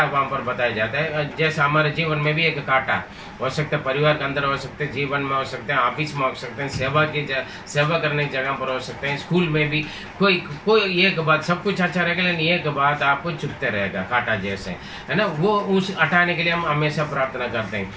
वहां पर बताया जाता है, जैसे हमारे जीवन में भी एक कांटा हो सकता है, परिवार के अंदर हो सकते हैं, जीवन में हो सकते हैं, ऑफिस में हो सकते हैं, सेवा करने की जगह पर हो सकते हैं, स्कूल में भी कोई एक बात, सब कुछ अच्छा रहेगा लेकिन एक बात आपको चुभते रहेगा, कांटा जैसे, है ना। वो उस हटाने के लिए हम हमेशा प्रार्थना करते हैं।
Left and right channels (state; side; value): identical; both; correlation 1.00